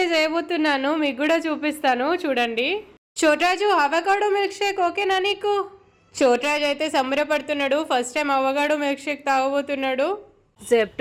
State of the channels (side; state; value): both; identical; correlation 1.00